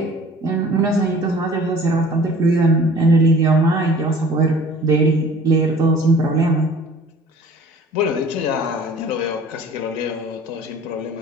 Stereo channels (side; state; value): both; normal; correlation 0.48